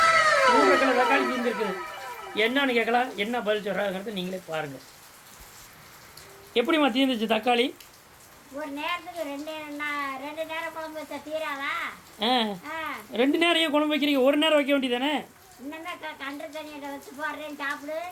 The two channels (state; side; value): identical; both; correlation 1.00